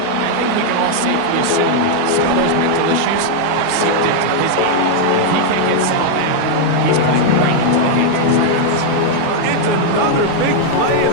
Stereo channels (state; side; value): different; both; correlation 0.00